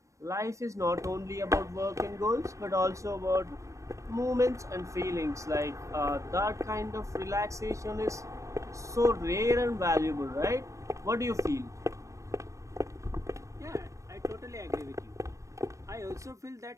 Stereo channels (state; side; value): late; left; 0.15 ms